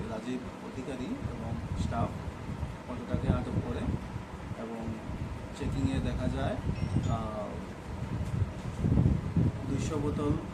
রাজীব অধিকারী এবং স্টাফ অটোটাকে আটক করে এবং চেকিংয়ে দেখা যায় 200 বোতল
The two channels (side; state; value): both; identical; correlation 1.00